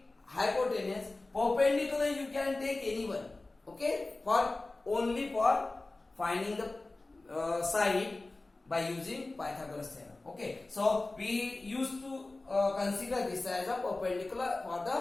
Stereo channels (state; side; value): quieter; right; 3.1 dB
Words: hypotenuse. Perpendicular you can take anyone, okay, for only for finding the side by using Pythagoras theorem. Okay, so we used to consider this as a perpendicular for